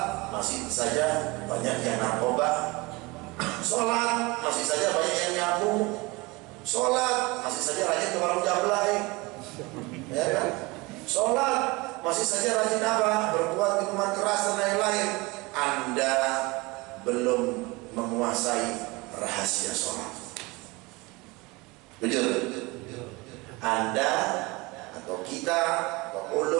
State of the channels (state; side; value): quieter; left; 24.2 dB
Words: masih saja banyak yang narkoba. Sholat masih saja banyak yang nyabu. Sholat masih saja rajin ke warung jablay, ya kan? Sholat masih saja rajin apa? Berbuat minuman keras dan lain-lain. Anda belum menguasai rahasia sholat. Jujur, Anda atau kita atau